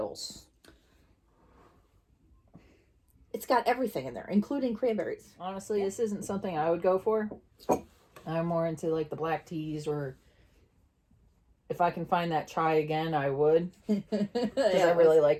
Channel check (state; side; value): identical; both; correlation 1.00